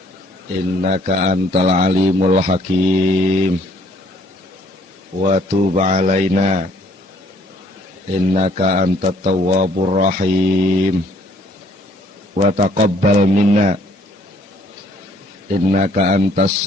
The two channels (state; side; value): normal; both; correlation 0.62